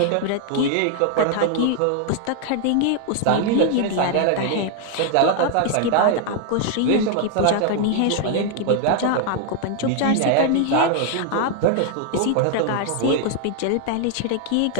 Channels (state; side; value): different; both; correlation 0.00